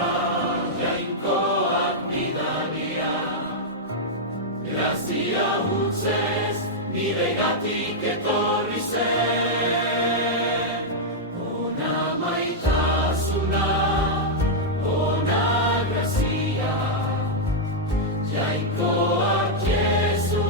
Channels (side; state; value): both; normal; correlation -0.05